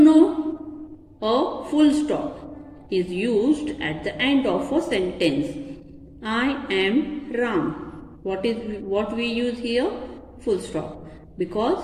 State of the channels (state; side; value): identical; both; correlation 1.00